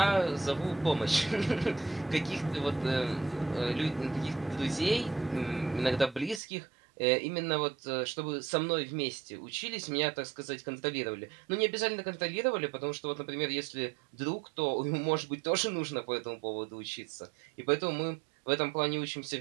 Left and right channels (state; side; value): drops out; left; at 6.4 s